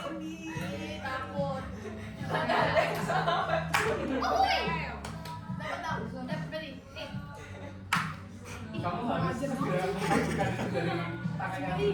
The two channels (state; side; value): identical; both; correlation 1.00